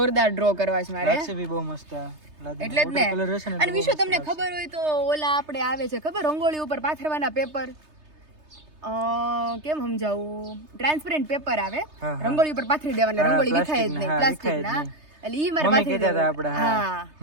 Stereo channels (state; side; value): late; left; 3.3 ms